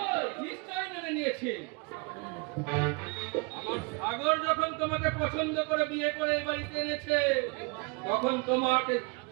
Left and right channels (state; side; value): quieter; left; 31.5 dB